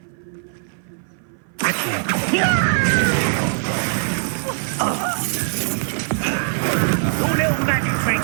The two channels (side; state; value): left; silent; 58 dB below the other